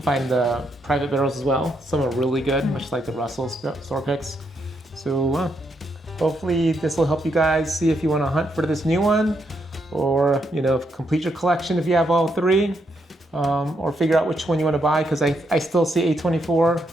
the private barrels as well. Some are really good, much like the Russell store picks. So hopefully this will help you guys see if you want to hunt for this new one, or you know, complete your collection if you have all 3. Or figure out which one you want to buy, because I still see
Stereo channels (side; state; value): both; normal; correlation 0.78